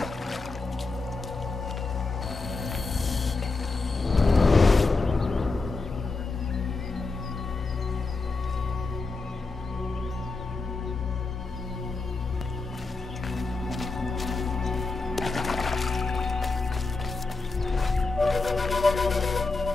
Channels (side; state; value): right; quieter; 3.8 dB